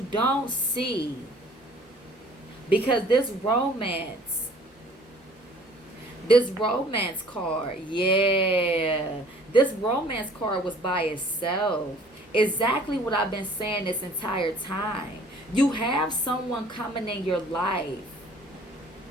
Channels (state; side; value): normal; both; correlation 0.53